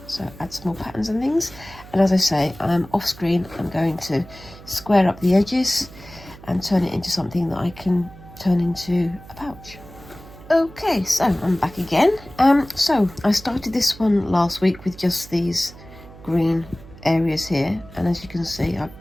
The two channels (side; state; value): right; noise; hum, 19 dB below the sound